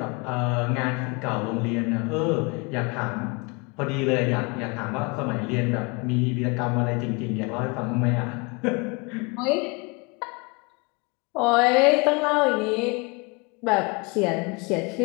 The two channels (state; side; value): quieter; right; 29.0 dB